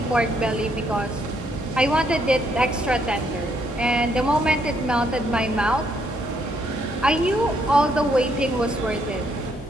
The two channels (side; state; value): both; normal; correlation 0.72